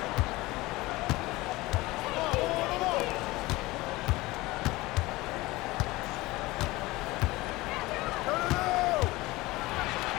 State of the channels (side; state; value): right; quieter; 20.3 dB